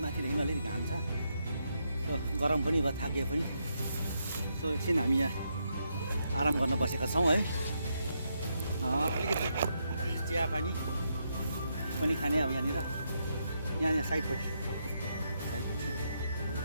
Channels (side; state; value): both; inverted; correlation -0.80